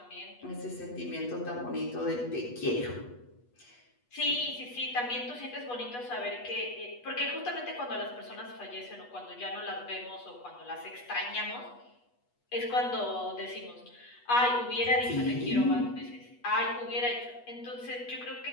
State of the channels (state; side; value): late; right; 8.2 ms